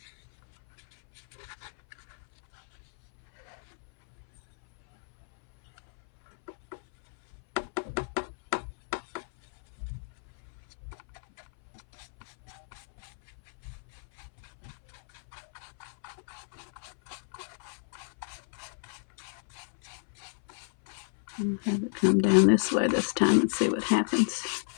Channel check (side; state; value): right; silent; 57 dB below the other